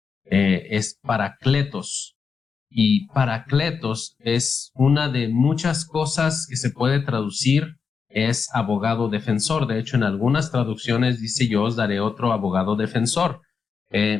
es parakletos, y parakletos es una de muchas cosas que se puede traducir. Es abogado defensor. De hecho, en algunas traducciones dice: yo os daré otro abogado defensor.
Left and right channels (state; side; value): quieter; right; 5.7 dB